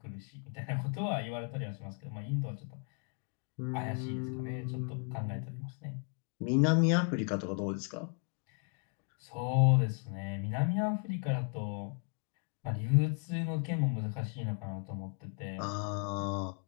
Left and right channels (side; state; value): right; quieter; 39.4 dB